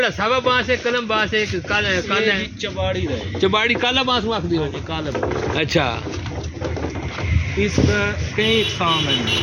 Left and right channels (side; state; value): both; identical; correlation 1.00